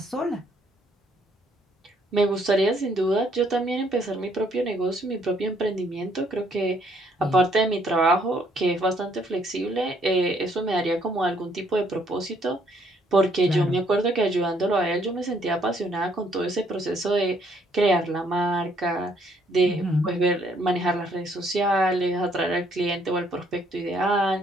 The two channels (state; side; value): normal; both; correlation 0.67